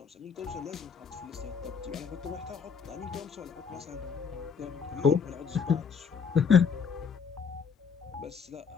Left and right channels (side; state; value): right; quieter; 6.2 dB